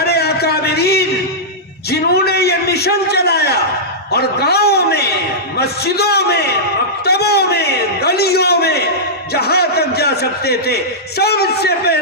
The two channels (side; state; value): both; normal; correlation -0.13